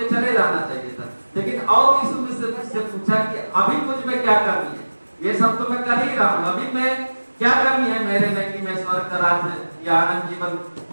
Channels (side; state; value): both; inverted; correlation -1.00